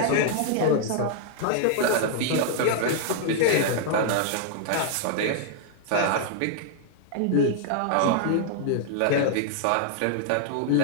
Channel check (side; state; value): both; different; correlation 0.00